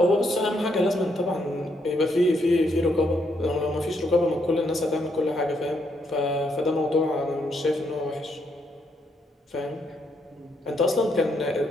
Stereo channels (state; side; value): normal; both; correlation 0.76